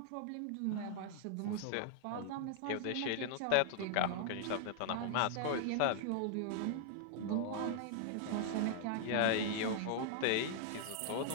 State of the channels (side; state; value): both; different; correlation 0.00